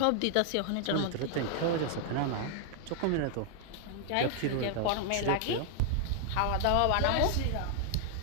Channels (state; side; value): different; both; correlation 0.00